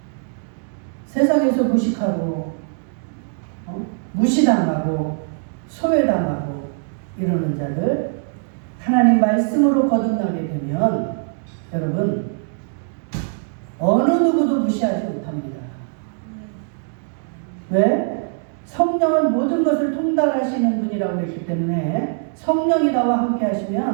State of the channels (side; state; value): left; silent; digital silence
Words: 세상에서 무식하고 무시당하고 소외당하고 이러는 자들 하나님 말씀으로 거듭나게 되면 여러분 어느 누구도 무시하지 못합니다. 왜? 성령은 모든 것을 통달하시는 분이라고 했기 때문에 성령이 나와 함께